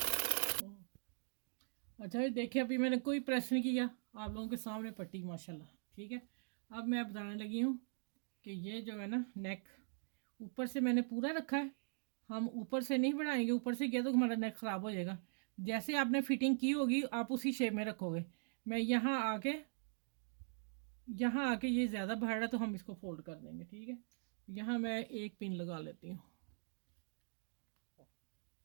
अच्छा ये देखिए अभी मैंने कोई प्रेस नहीं किया, आप लोगों के सामने पट्टी माशाल्लाह, ठीक है। अब मैं बताने लगी हूँ कि ये जो है ना नेक ऊपर से मैंने पूरा रखा है, हम ऊपर से नहीं बढ़ाएंगे, ऊपर से किया तो हमारा नेक ख़राब हो जाएगा। जैसे आपने फिटिंग की होगी आप उसी शेप में रखोगे। मैं यहाँ आके ये ज़्यादा बढ़ रहा है तो हम इसको फोल्ड कर देंगे, ठीक है। यहाँ मैं एक पिन लगा लेती हूँ,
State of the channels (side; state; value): left; silent; digital silence